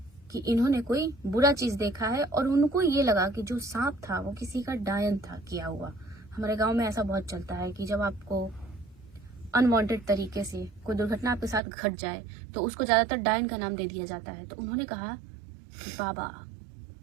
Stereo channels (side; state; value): left; drops out; at 11.6 s